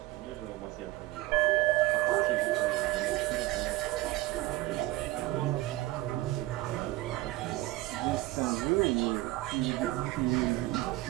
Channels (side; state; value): left; quieter; 18.4 dB